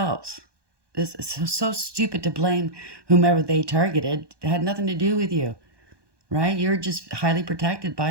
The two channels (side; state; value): left; late; 1.2 ms